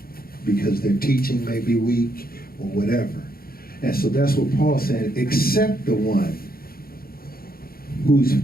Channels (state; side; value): late; right; 0.43 ms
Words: because their teaching may be weak or whatever. And so that's what Paul said, except the one whose